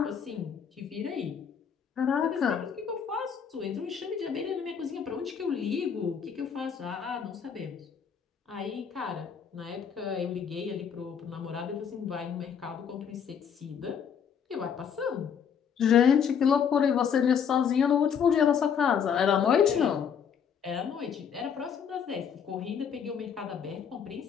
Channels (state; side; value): quieter; right; 7.4 dB